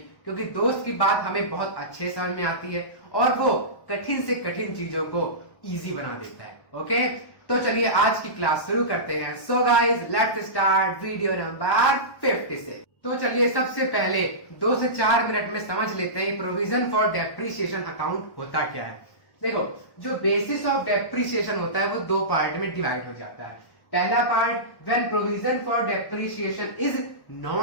क्योंकि दोस्त की बात हमें बहुत अच्छे समझ में आती है और वो कठिन से कठिन चीजों को इजी बना देता है। ओके, तो चलिए आज की क्लास शुरू करते हैं। So guys, let's start video number 50 से। तो चलिए सबसे पहले 2 से 4 मिनट में समझ लेते हैं प्रोविजन फॉर डेप्रिसिएशन अकाउंट होता क्या है। देखो, जो बेसिस ऑफ डेप्रिसिएशन होता है वो 2 पार्ट में डिवाइड हो जाता है। पहला part, when provision for depreciation is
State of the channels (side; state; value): right; late; 1.2 ms